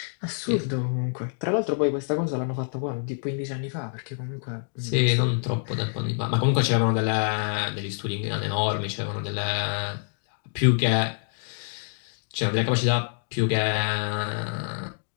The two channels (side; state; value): right; silent; digital silence